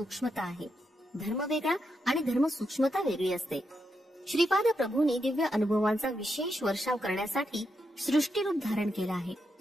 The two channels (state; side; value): normal; both; correlation 0.83